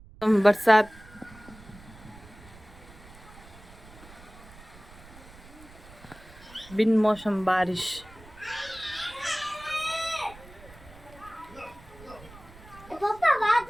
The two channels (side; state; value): right; noise; rumble, 20 dB below the sound